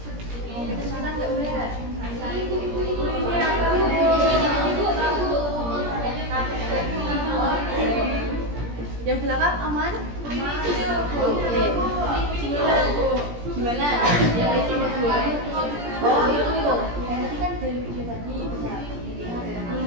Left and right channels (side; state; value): left; late; 17 ms